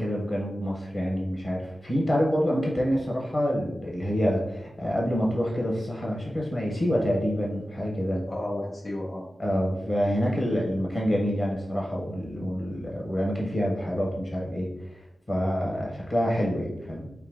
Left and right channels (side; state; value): both; normal; correlation 0.94